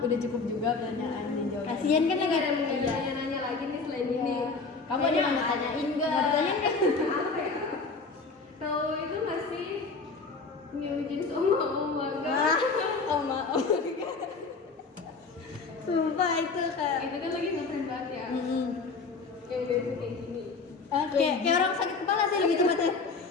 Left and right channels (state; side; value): quieter; right; 4.3 dB